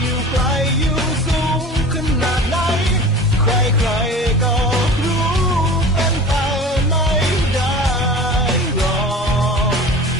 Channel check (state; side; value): normal; both; correlation 0.38